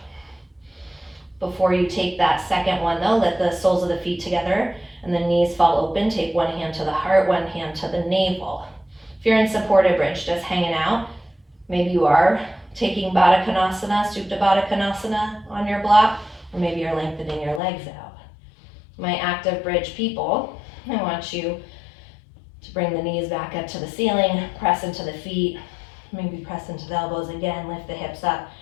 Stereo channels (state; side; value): drops out; right; at 17.6 s